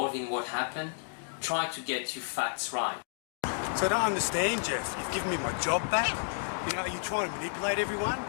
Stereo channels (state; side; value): silent; right; digital silence